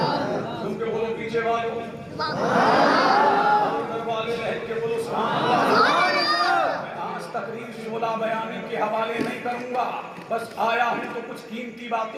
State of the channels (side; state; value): both; identical; correlation 1.00